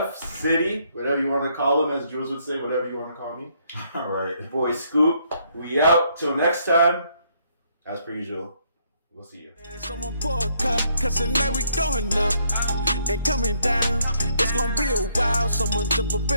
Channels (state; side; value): inverted; both; correlation -0.70